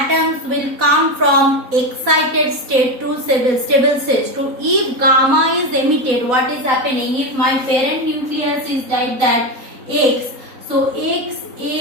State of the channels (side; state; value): left; late; 3.9 ms